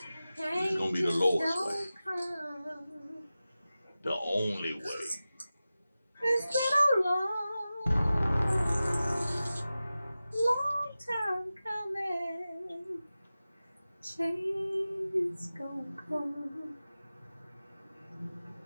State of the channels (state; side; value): inverted; both; correlation -0.95